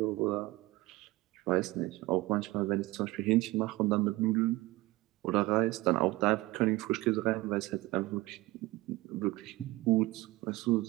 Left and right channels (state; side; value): quieter; left; 20.0 dB